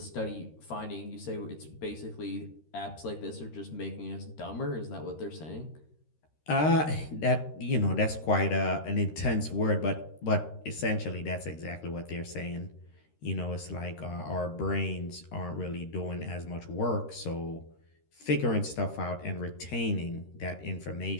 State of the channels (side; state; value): right; late; 13 ms